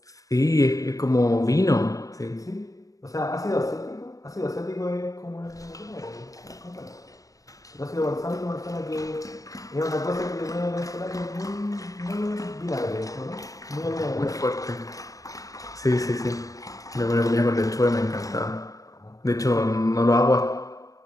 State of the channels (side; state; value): right; late; 0.16 ms